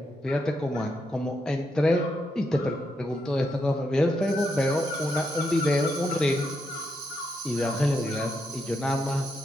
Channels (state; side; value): normal; both; correlation 0.81